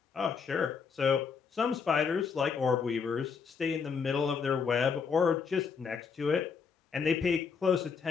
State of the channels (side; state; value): right; quieter; 5.9 dB